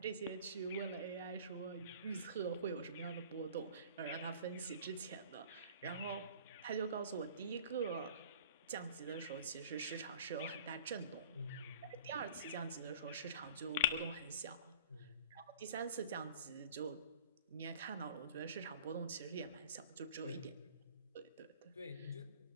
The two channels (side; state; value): both; inverted; correlation -0.45